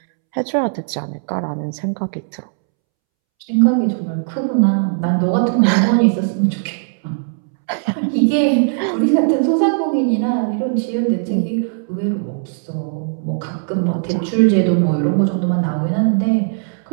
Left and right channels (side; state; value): left; silent; 67 dB below the other